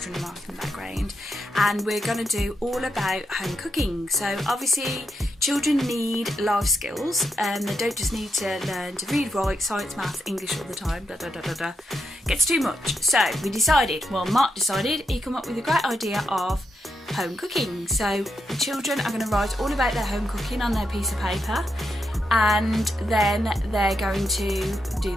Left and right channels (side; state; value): both; normal; correlation 0.83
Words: marking in the background, and we're going to do all about home cooking. So obviously children need life skills, they don't just need to learn to read, write, science, maths, English all the time, Gets too much. So Mark decided he'd come up with a great idea of home cooking. So the children are going to write all about their home cooking on their piece of paper, and then they're going to do